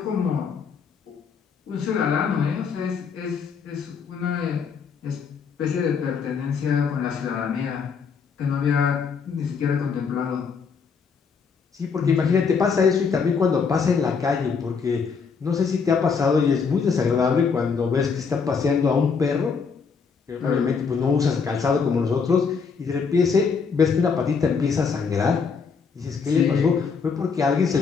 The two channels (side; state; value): right; quieter; 5.7 dB